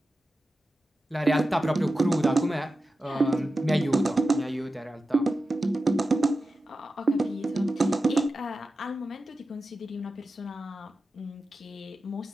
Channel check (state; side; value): normal; both; correlation 0.92